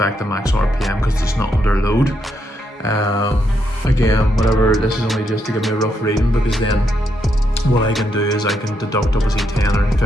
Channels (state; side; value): normal; both; correlation 0.79